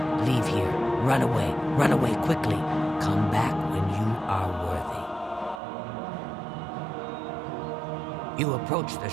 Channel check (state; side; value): drops out; left; at 5.6 s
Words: leave here. Run away. Run away quickly. Come back when you are worthy. You approach the